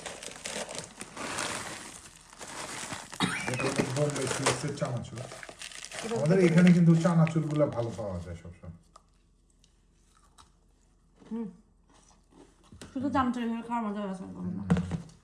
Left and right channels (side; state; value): both; identical; correlation 1.00